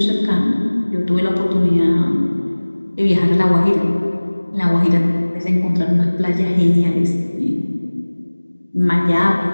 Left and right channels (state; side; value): inverted; both; correlation -1.00